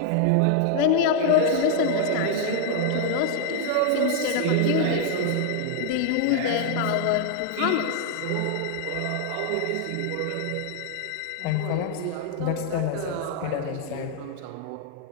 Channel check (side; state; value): both; different; correlation 0.00